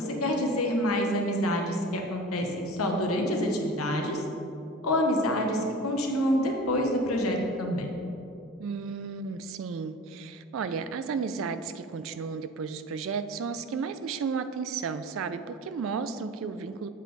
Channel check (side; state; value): both; normal; correlation 0.37